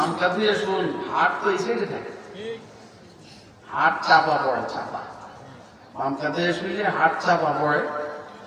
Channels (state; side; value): identical; both; correlation 1.00